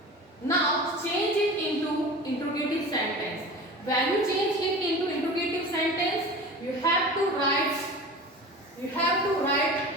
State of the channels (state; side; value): normal; both; correlation 0.35